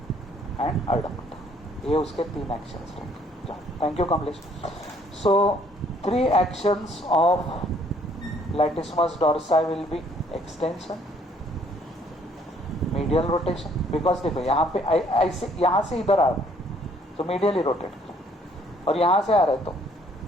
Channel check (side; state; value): both; normal; correlation 0.63